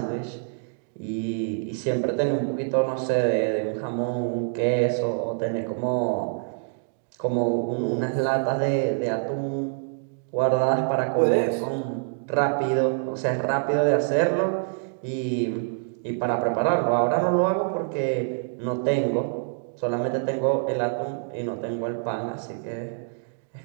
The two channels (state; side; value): silent; left; digital silence